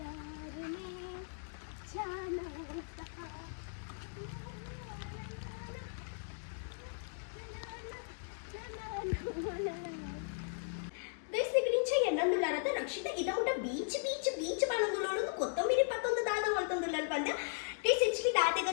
ఎన్నందులారత రక్షిత ఇదొకట బీచ్ బీచ్ బీచ్ పనందులోను కొత్తమీరి పక్కందు దాద వల్తందులారు పంద ಟೇಸ್ ಹೆಚ್ಚಿಗೆ ದಾತೆ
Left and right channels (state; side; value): silent; right; digital silence